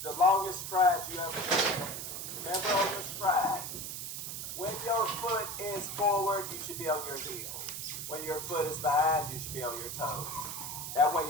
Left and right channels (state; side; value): noise; right; hiss, 6 dB below the sound